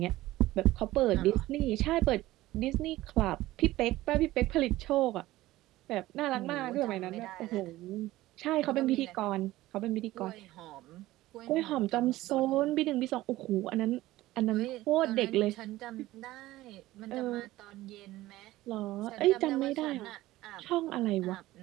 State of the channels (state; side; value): quieter; left; 16.8 dB